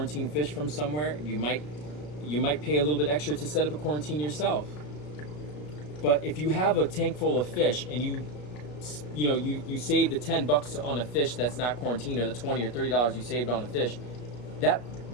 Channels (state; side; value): late; right; 34 ms